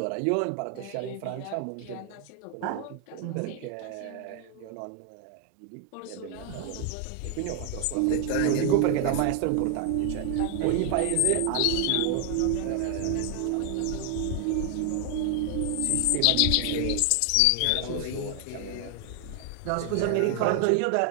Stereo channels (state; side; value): different; both; correlation 0.00